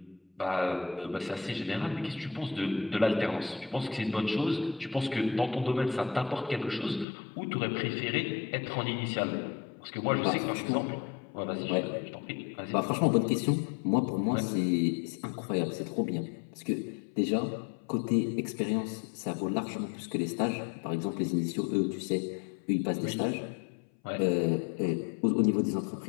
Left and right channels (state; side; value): drops out; right; at 7.1 s